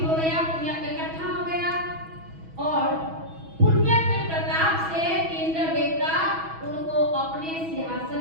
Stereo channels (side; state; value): left; late; 6.2 ms